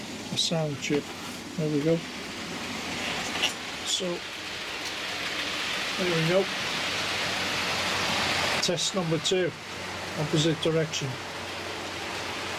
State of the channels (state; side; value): identical; both; correlation 1.00